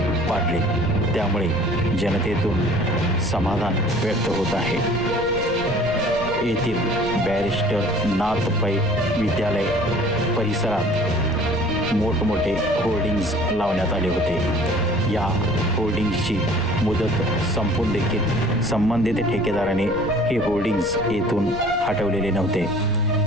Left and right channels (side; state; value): left; noise; rumble, 12 dB below the sound